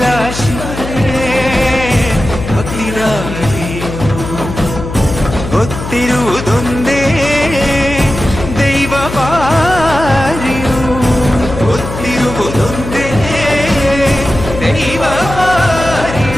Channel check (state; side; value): noise; left; hum, 8 dB below the sound